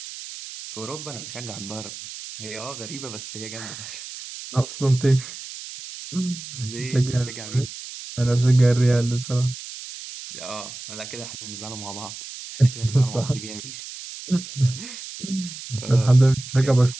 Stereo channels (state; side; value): noise; right; hiss, 12 dB below the sound